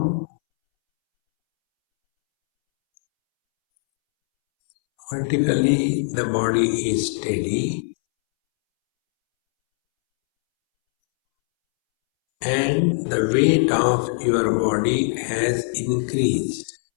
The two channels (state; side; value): silent; right; 65 dB below the other